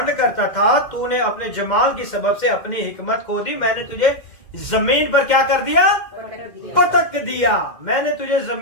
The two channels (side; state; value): right; late; 2.1 ms